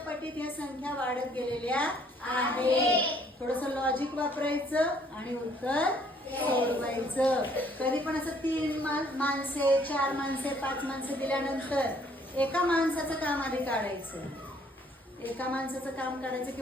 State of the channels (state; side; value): normal; both; correlation 0.63